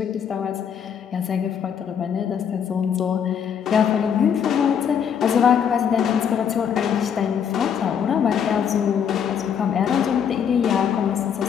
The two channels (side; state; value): right; quieter; 7.9 dB